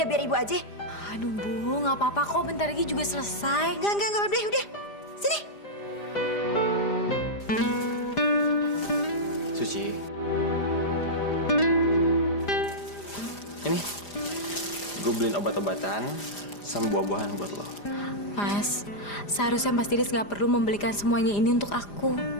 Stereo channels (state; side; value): late; right; 4.9 ms